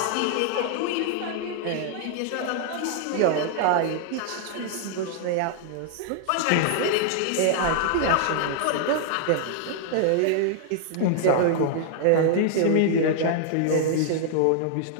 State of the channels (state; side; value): different; both; correlation 0.00